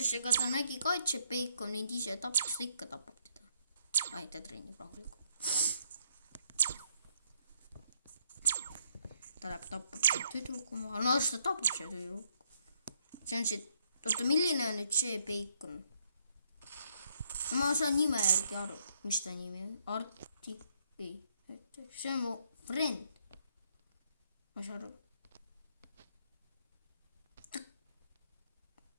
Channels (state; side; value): inverted; both; correlation -0.71